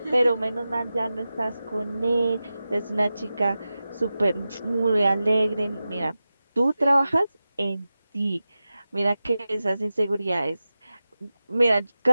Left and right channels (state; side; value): inverted; both; correlation -0.94